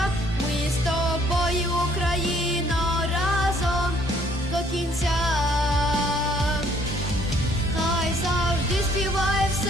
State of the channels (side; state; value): both; normal; correlation 0.62